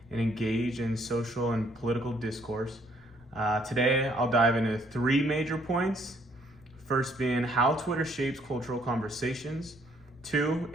and engage in social and political discourse. Today, I'll dive into three major points. First being how Twitter shapes cultural conversations. Two,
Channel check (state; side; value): noise; right; rumble, 29 dB below the sound